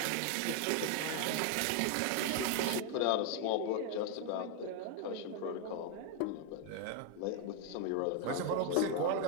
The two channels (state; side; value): different; both; correlation 0.01